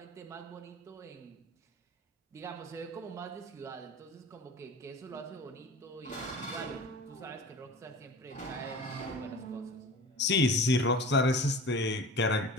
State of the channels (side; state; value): both; normal; correlation 0.38